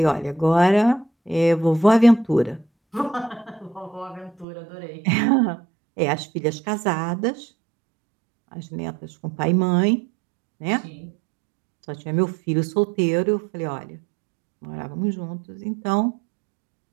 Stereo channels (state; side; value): drops out; left; at 4.5 s